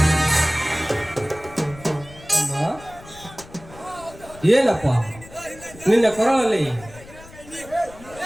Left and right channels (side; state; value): left; noise; rumble, 20 dB below the sound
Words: ಏನಪ್ಪ ನಿನ್ನ ಕೊರಳಲ್ಲಿ